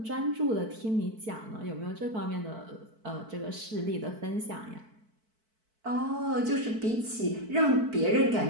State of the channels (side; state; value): left; late; 4.5 ms